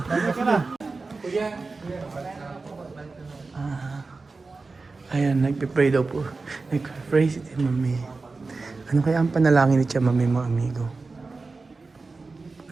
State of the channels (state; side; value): quieter; left; 3.9 dB